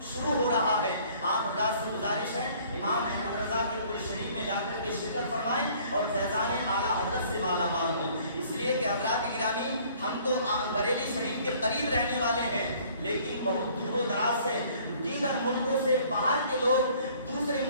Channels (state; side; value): inverted; both; correlation -0.56